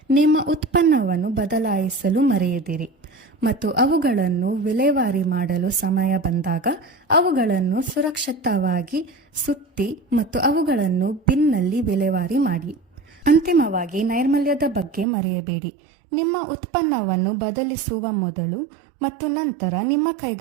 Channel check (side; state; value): left; drops out; at 15.1 s